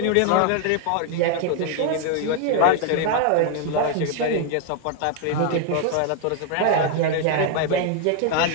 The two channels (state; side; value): different; both; correlation 0.00